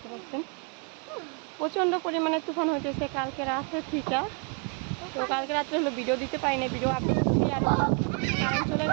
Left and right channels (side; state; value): left; quieter; 36.6 dB